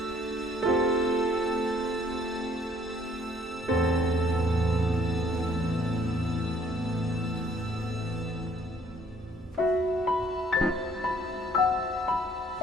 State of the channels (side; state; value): both; normal; correlation 0.62